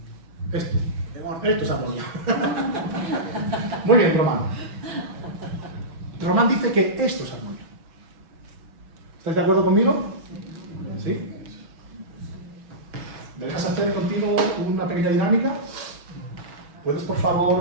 Esto es armonía. Muy bien, Román. Román dice que esto es armonía. ¿Estáis de acuerdo conmigo? ¿Sí? ¿Me dejas hacer contigo una pequeña dinámica? ¿Puedes, por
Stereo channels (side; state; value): left; late; 6.2 ms